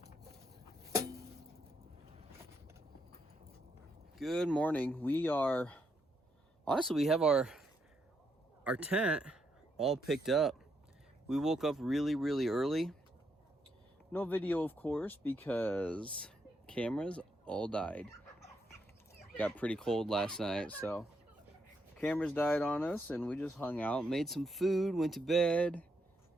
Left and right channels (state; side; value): normal; both; correlation 0.78